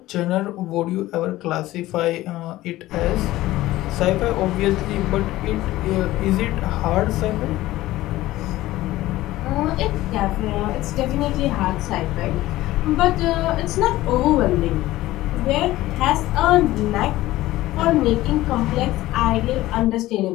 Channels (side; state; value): right; quieter; 16.5 dB